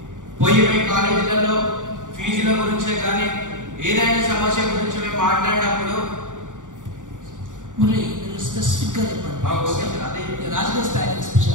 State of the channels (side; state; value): left; late; 0.87 ms